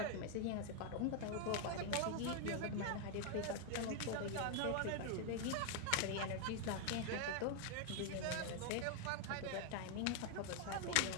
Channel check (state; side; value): different; both; correlation 0.00